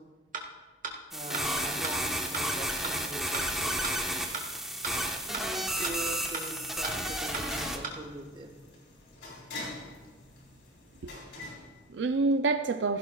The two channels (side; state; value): both; normal; correlation 0.38